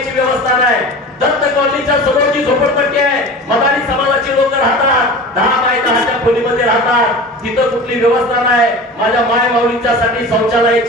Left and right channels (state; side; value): normal; both; correlation 0.35